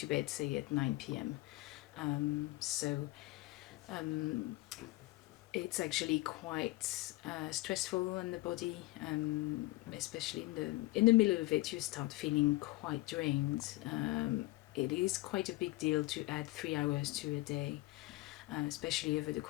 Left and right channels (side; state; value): right; quieter; 20.0 dB